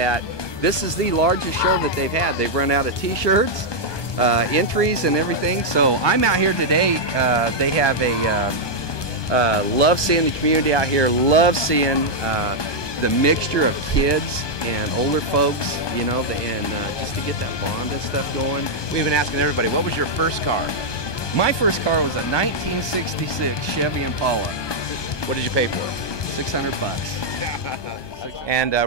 this is the largest show that they've had. They've run out of t-shirts, entries, and everything, so I'm out here today. They have a love seeing the community out here, love seeing the mixture of kids and older folks, you know, and just to get that bond and stuff going. We've been asking everybody, what was your first car? My first car was a 1966 Chevy Impala. What did you pay for it? $600. And we're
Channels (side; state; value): right; late; 1.2 ms